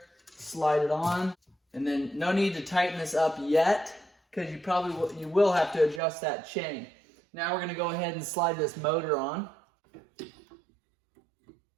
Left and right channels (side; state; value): left; drops out; at 6.0 s